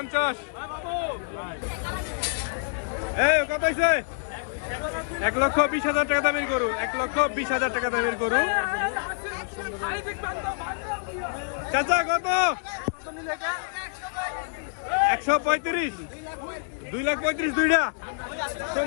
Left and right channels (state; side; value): silent; right; digital silence